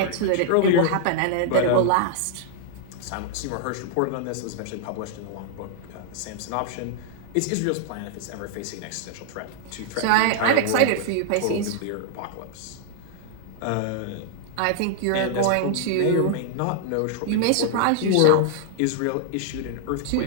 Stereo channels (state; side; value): different; both; correlation -0.01